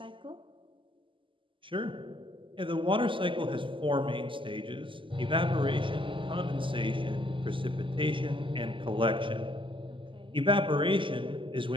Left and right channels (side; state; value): left; late; 0.25 ms